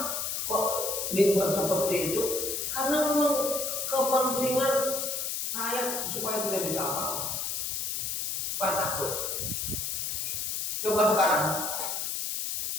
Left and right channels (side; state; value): left; noise; hiss, 2 dB below the sound